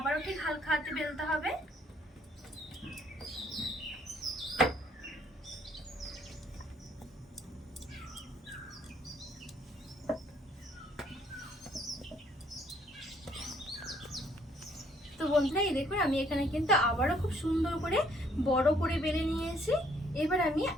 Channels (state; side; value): normal; both; correlation 0.65